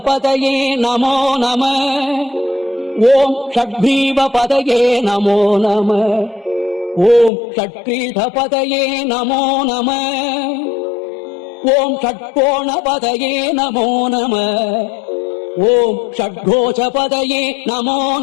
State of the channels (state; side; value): drops out; right; at 7.3 s